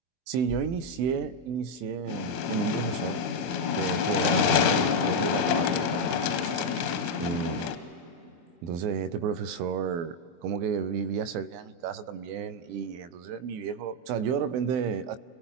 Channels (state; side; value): late; left; 23 ms